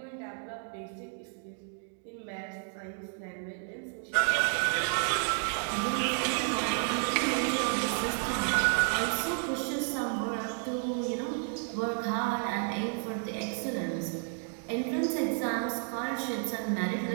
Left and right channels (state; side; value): silent; left; 57 dB below the other